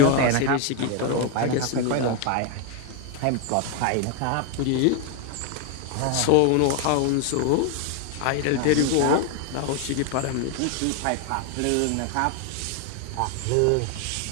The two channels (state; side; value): different; both; correlation 0.01